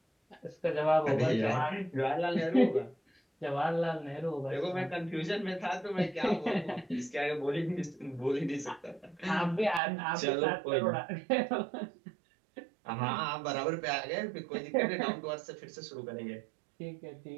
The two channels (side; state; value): left; drops out; at 9.8 s